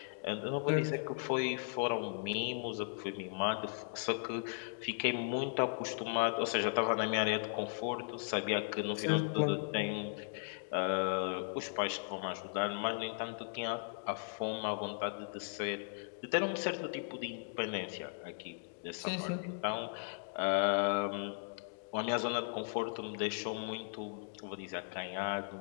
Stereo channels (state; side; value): silent; right; digital silence